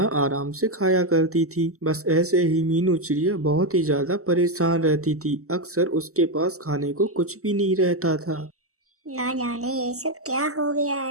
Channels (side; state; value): left; late; 0.64 ms